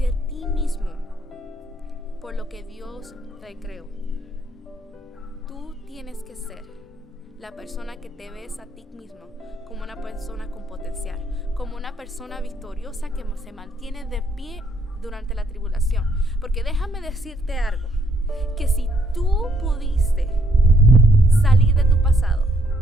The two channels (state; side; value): normal; both; correlation 0.70